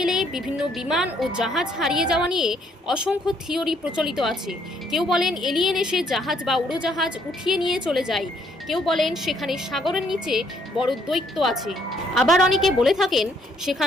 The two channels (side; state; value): both; normal; correlation 0.68